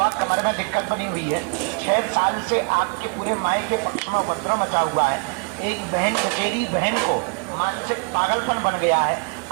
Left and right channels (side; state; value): left; quieter; 34.6 dB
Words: कमर में दिक्कत बनी हुई है 6 साल से आपके पूरे माई के पक्ष में उपद्रव मचा हुआ है एक बहन चचेरी बहन को मानसिक पागलपन बन गया है